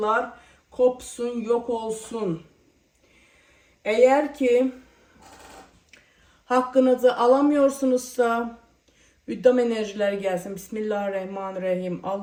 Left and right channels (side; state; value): both; identical; correlation 1.00